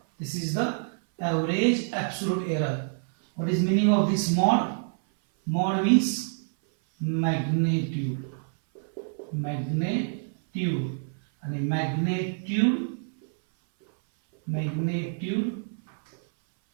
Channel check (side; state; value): left; silent; 58 dB below the other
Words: This is the average absolute error. What is meaning of this mod? Mod means magnitude. And magnitude